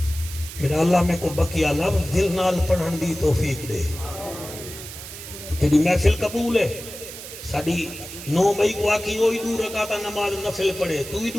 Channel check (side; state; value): right; noise; hiss, 12 dB below the sound